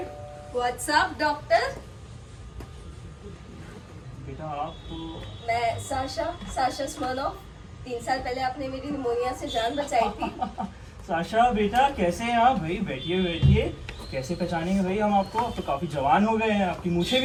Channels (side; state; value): both; identical; correlation 1.00